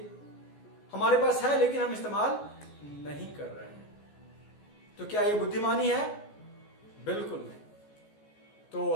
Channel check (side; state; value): right; late; 14 ms